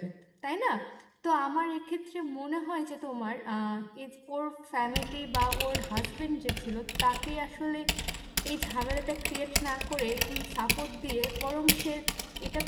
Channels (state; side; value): identical; both; correlation 1.00